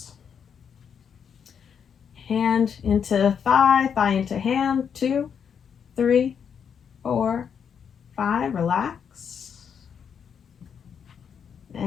Hand into thigh, thigh into hand. 2, 3, 4, 5, relax.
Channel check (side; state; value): right; quieter; 7.4 dB